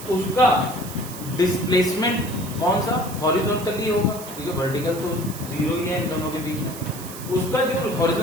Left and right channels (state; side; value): noise; right; hiss, 13 dB below the sound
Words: उसका डिस्प्लेसमेंट कौन सा, हॉरिजॉन्टली होगा, ठीक है, वर्टिकल तो जीरो ही है इन दोनों के बीच में। उसका जो